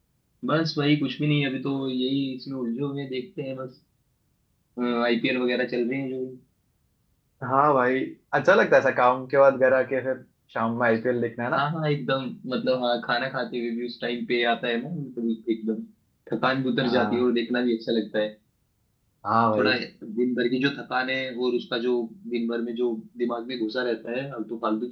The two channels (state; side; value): identical; both; correlation 1.00